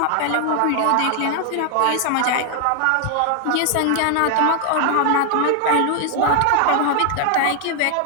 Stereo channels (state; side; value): different; both; correlation 0.00